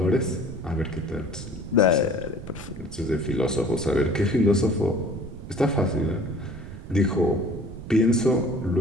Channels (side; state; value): right; noise; rumble, 12 dB below the sound